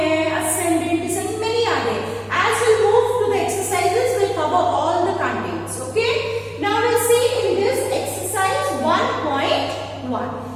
ascending, descending, many are there. As we move to the exercises, we'll cover all the contents. Okay, now we'll see in this exercise 1.1.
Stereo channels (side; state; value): both; identical; correlation 1.00